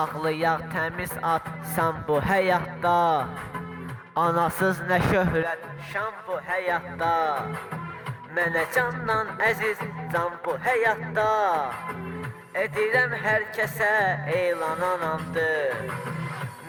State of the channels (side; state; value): both; identical; correlation 1.00